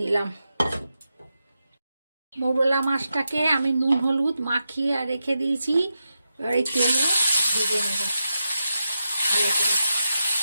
নিলাম। মৌরলা মাছটাকে আমি নুন হলুদ মাখিয়ে রেখে দিয়েছি, এবার এই তেলে ভেজে নেব ভালো করে।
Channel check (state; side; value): inverted; both; correlation -0.88